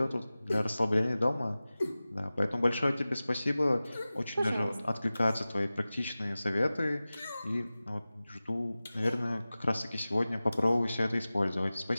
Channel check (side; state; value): both; inverted; correlation -0.97